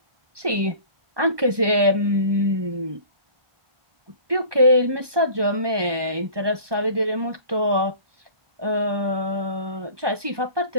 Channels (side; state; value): left; late; 1.2 ms